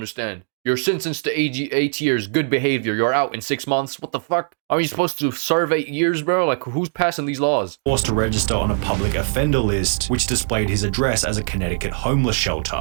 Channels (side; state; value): left; silent; digital silence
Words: You're sentenced to 8 years, good behavior. You're out in 6 months. What the fuck? Are you supposed to serve 8 years, bro? Like, who's passing these laws? Forced to register on a public offender list, which displayed his address as a Connecticut homeless